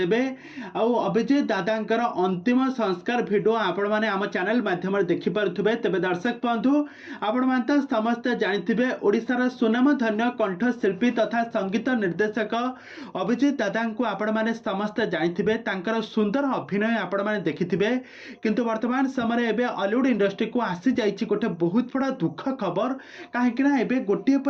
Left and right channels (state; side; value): identical; both; correlation 1.00